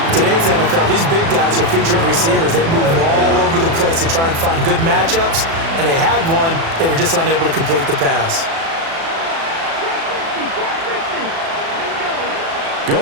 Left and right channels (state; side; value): late; left; 36 ms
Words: Today's NFL, these big guys are featured receivers. They move all over the place to try and find good matchups, and they had one. They were just unable to complete the pass.